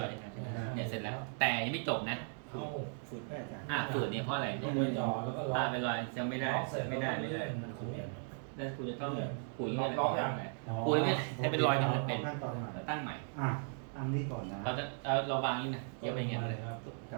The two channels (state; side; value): silent; left; 53 dB below the other